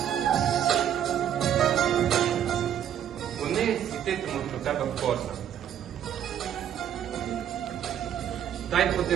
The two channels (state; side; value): quieter; left; 9.9 dB